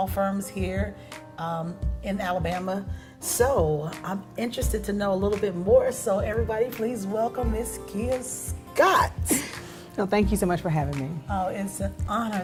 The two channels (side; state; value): both; identical; correlation 1.00